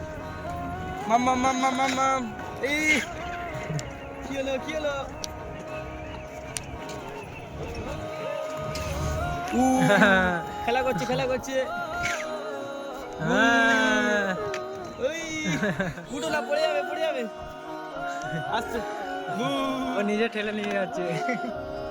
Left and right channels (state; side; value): identical; both; correlation 1.00